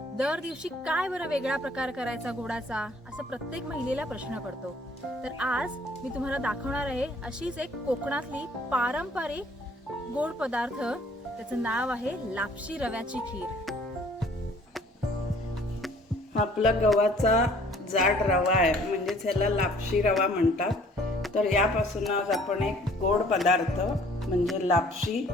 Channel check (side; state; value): both; normal; correlation 0.56